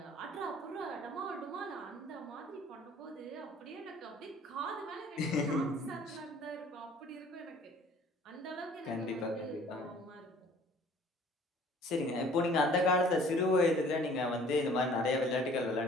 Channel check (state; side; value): normal; both; correlation 0.53